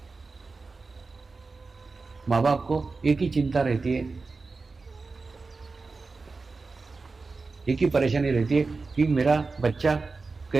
माँ बाप को एक ही चिंता रहती है, एक ही परेशानी रहती है कि मेरा बच्चा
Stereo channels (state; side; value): quieter; left; 4.0 dB